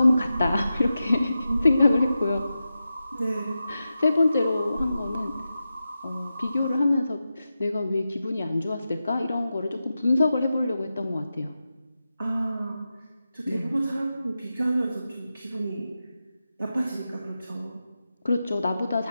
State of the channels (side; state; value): both; inverted; correlation -0.91